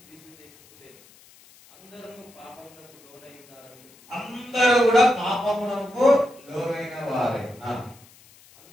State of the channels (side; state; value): left; noise; hiss, 26 dB below the sound